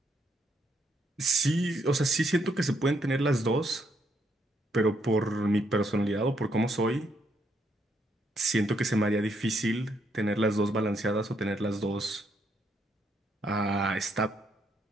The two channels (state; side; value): normal; both; correlation 0.74